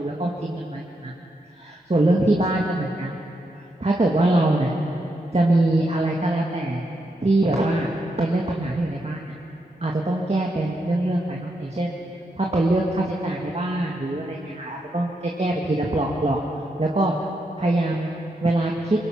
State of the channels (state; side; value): normal; both; correlation 0.82